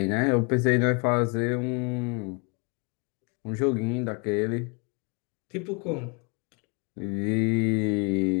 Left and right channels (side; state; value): right; quieter; 33.4 dB